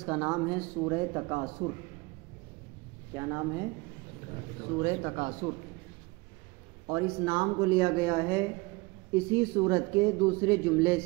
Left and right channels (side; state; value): left; quieter; 24.8 dB